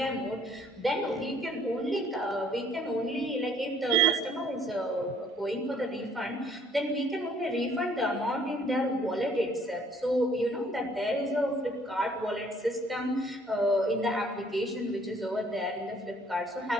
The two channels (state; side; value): normal; both; correlation 0.61